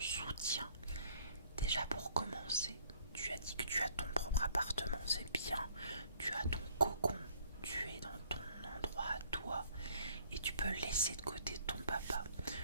Déjà pour commencer, tu as dit que tu as ton propre appartement, c'est bien. Tu as ton cocon, tu es dans ton endroit à toi et tu peux laisser de côté ton papa.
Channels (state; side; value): inverted; both; correlation -0.60